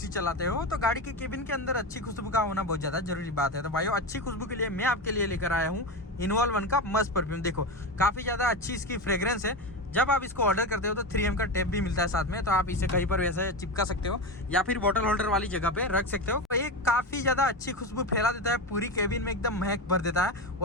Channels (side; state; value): both; normal; correlation 0.19